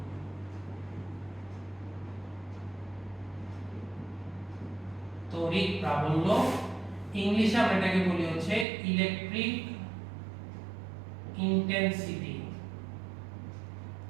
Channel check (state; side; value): drops out; left; at 8.7 s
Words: তড়িৎ প্রাবল্য ইংলিশে আমরা এটাকে বলি হচ্ছে ইলেকট্রিক ইন্টেন্সিটি।